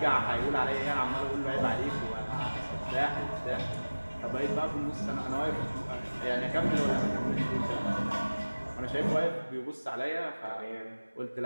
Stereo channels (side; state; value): both; inverted; correlation -1.00